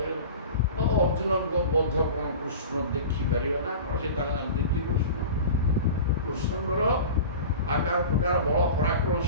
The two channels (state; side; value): inverted; both; correlation -0.35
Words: ଅର୍ଜୁନଙ୍କ ବଧ କ'ଣ କୃଷ୍ଣ ଦେଖିପାରିବେ ନା କ'ଣ ସେ ତାଙ୍କ ଜାଣିଛନ୍ତି କୃଷ୍ଣଙ୍କର ଆକାର ପ୍ରକାର ବଳ ପରାକ୍ରମ